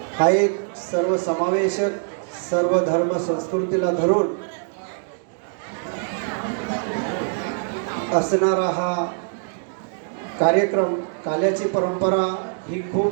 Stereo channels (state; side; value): silent; left; digital silence